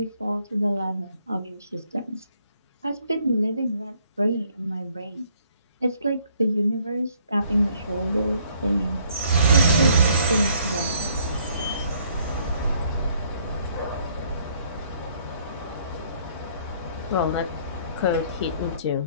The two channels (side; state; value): both; inverted; correlation -0.64